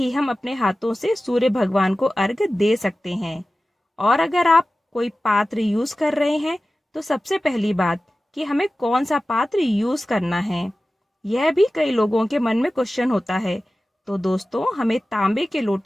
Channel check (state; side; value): normal; both; correlation 0.96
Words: हम अपने हाथों से सूर्य भगवान को अर्घ्य दे सकते हैं। और अगर आप कोई पात्र यूज कर रहे हैं तो सबसे पहली बात कि हमें कौन सा पात्र यूज करना है, यह भी कई लोगों के मन में क्वेश्चन होता है। तो दोस्तों, हमें तांबे के